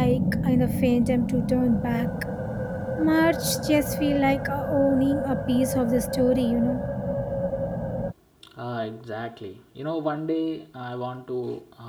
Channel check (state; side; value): identical; both; correlation 1.00